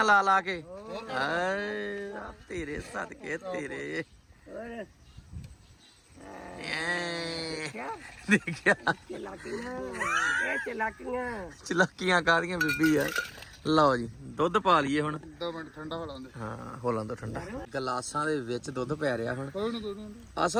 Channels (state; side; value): identical; both; correlation 1.00